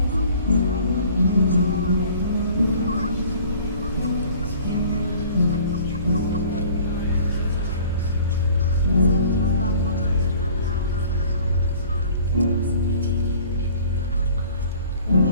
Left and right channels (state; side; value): inverted; both; correlation -0.50